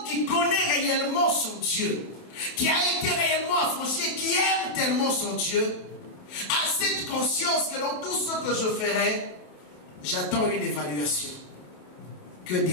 qui connaît réellement son Dieu, qui a été réellement affranchi, qui aime tellement son Dieu, a cette conscience que dans tout ce que je ferai, j'attends une évaluation. Que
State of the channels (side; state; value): right; late; 27 ms